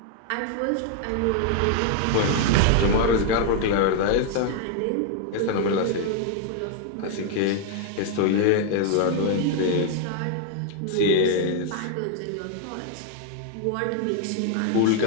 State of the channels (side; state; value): both; different; correlation 0.00